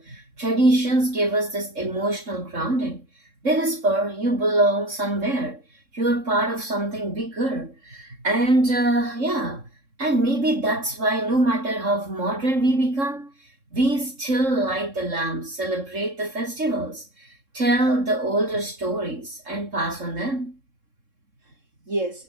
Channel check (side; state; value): left; late; 3.7 ms